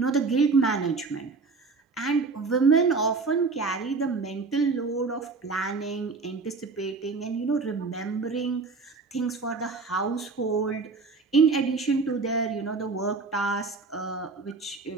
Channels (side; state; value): left; quieter; 4.2 dB